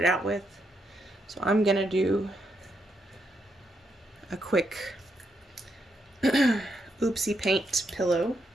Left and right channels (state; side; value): normal; both; correlation 0.80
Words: out with. So I'm gonna do a quick oopsie paint pillow.